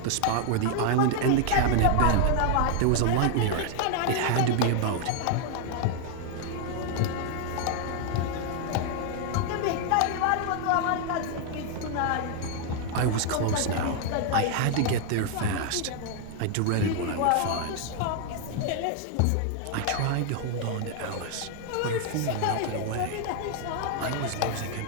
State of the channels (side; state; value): both; different; correlation 0.00